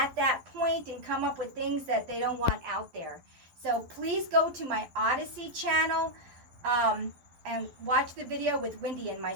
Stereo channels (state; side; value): late; left; 12 ms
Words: that point and come up with things that they don't want out there. So please go to my Odyssey channel and watch the video with Wendy and